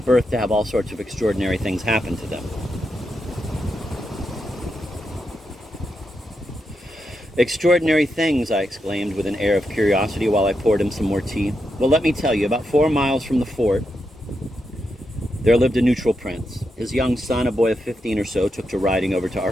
to have all sorts of extraordinary things happen to them. Extraordinary things, I exclaimed with an air of curiosity while I poured him some more tea. Well, let me tell you, about 4 miles from the fort, there lived a neutral prince. His young son, a boy of 15 or so, took to riding over to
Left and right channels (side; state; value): both; normal; correlation 0.85